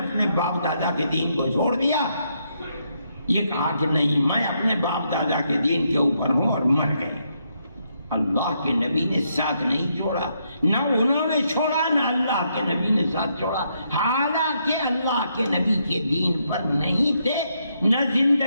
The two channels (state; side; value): inverted; both; correlation -0.77